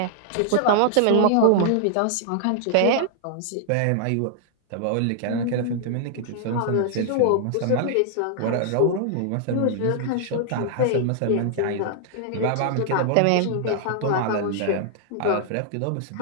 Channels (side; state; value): both; different; correlation -0.01